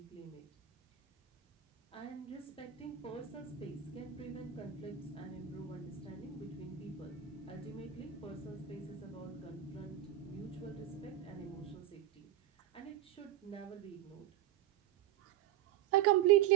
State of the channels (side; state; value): left; quieter; 12.1 dB